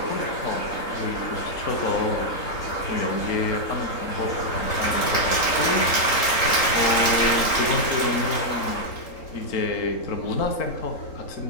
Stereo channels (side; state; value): right; late; 3.8 ms